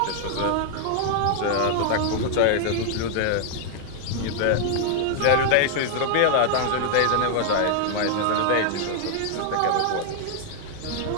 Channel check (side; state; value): both; different; correlation 0.00